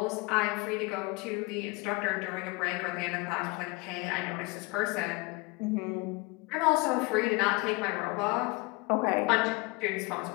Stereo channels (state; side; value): quieter; right; 26.0 dB